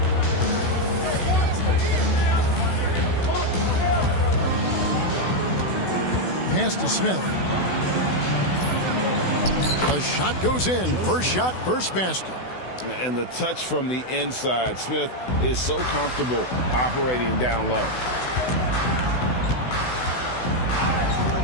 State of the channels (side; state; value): right; late; 16 ms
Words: Pass to Smith. The shot goes in. First shot, first basket. And the touch from the inside. Smith is so comfortable operating down low.